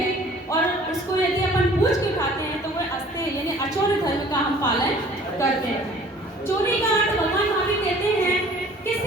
और उसको यदि अपन पूछ के उठाते हैं तो वह अस्ते यानी अचौर्य धर्म का हम पालन करते हैं। चोरी का अर्थ भगवान महावीर कहते हैं कि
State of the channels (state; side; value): normal; both; correlation 0.51